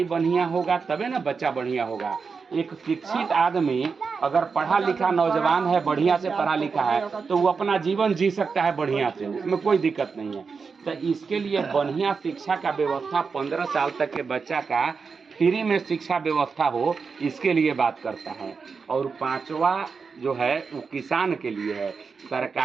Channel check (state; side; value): quieter; left; 5.2 dB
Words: बढ़िया होगा तबे ना बच्चा बढ़िया होगा। एक शिक्षित आदमी अगर पढ़ा लिखा नौजवान है, बढ़िया से पढ़ा लिखा है, तो वो अपना जीवन जी सकता है बढ़िया से, उसमें कोई दिक्कत नहीं है। तो इसके लिए बढ़िया शिक्षा का व्यवस्था 15 साल तक के बच्चा का फ्री में शिक्षा व्यवस्था हो, इसके लिए बात करता है। और पांचवा जो है वो किसान के लिए है।